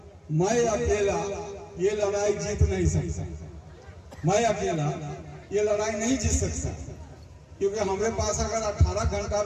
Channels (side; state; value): both; identical; correlation 1.00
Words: ये लड़ाई जीत नहीं सकता। मैं अकेला ये लड़ाई नहीं जीत सकता, क्योंकि हमारे पास अगर 18 घंटा